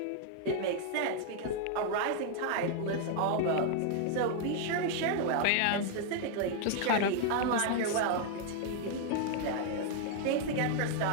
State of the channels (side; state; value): both; different; correlation -0.01